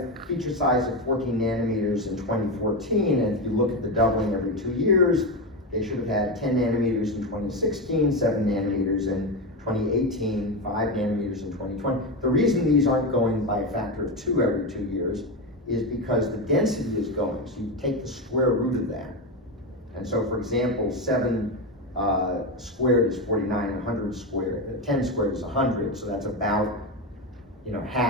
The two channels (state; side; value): normal; both; correlation 0.14